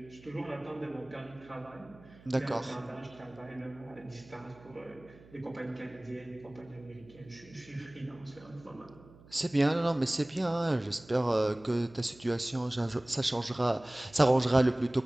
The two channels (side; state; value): right; noise; hum, 23 dB below the sound